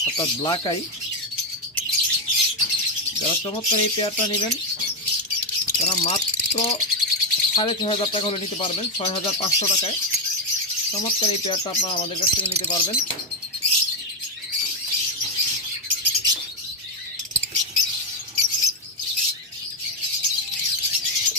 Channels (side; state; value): both; normal; correlation 0.05